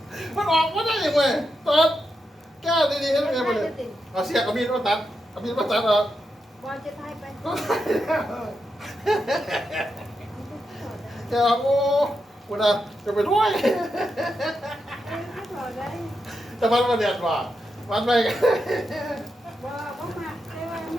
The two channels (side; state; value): both; normal; correlation 0.86